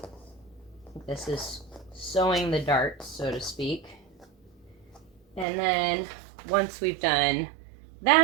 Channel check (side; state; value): left; drops out; at 5.5 s